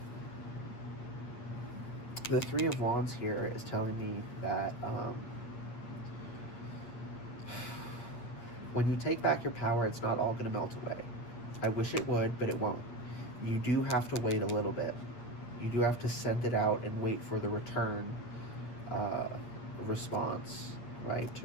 The Three of Wands here is telling me that when you take back your power, it's not all going to melt away. I wish it would, but it won't. You do have to wait a little bit. You do have to send it out and wait for the return response, right?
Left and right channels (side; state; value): right; late; 8.6 ms